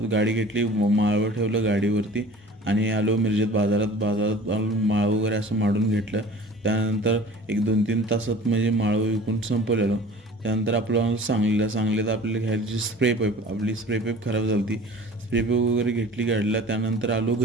गाडी घेतली, माळव ठेवलं गाडीवरती आणि आलो मिरजेत बाजारात आलो, माळव वगैरे असं माडून घेतलं. त्यानंतर एक 2-3 तासात म्हणजे माळव विकून संपवलेलो. त्यानंतर आपलं सांगलीत आपल्याला घ्यायची स्प्रे पाईप खराब झाली होती. स्प्रे पाईप वगैरे घेतली गाडीला. त्यानंतर आलो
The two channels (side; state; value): both; normal; correlation 0.44